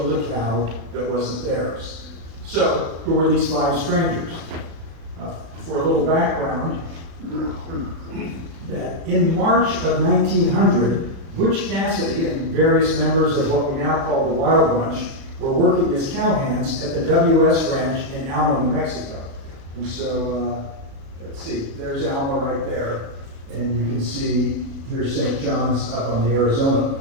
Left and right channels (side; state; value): left; late; 36 ms